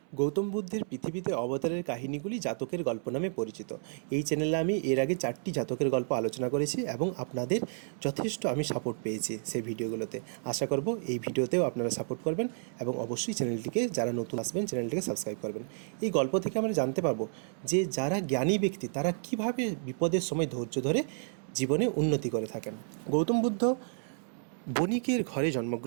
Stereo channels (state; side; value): silent; left; 57 dB below the other